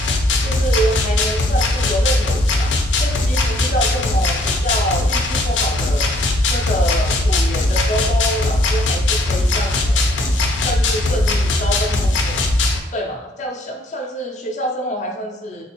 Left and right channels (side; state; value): both; normal; correlation 0.64